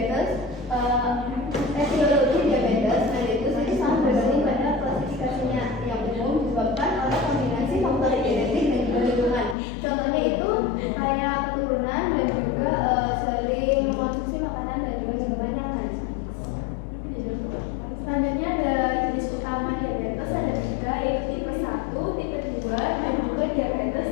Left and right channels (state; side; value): drops out; right; at 9.6 s